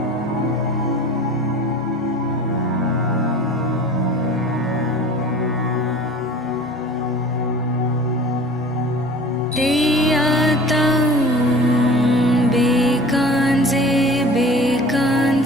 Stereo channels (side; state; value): both; normal; correlation 0.42